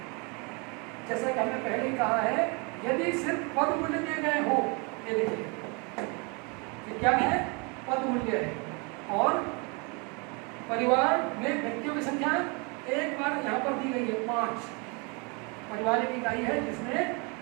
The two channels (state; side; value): quieter; left; 31.6 dB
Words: जैसा कि हमने पहले ही कहा है, यदि सिर्फ पद मूल्य दिए गए हो, ये देखिए ये क्या है, पद मूल्य है, और परिवार में व्यक्तियों की संख्या एक बार यहाँ पर दी गई है 5। परिवार एक इकाई है जिसमें